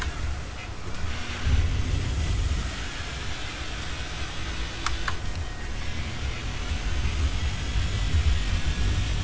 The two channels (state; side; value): identical; both; correlation 1.00